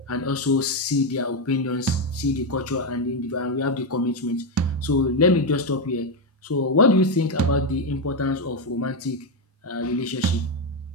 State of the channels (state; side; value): normal; both; correlation 0.06